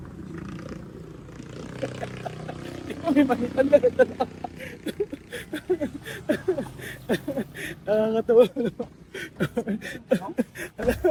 Ikaw may manitan na ganda na. Nakakatawa naman.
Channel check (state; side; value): identical; both; correlation 1.00